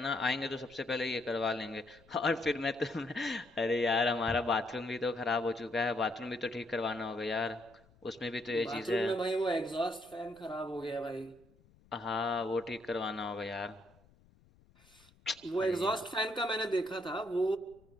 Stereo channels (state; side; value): noise; left; rumble, 29 dB below the sound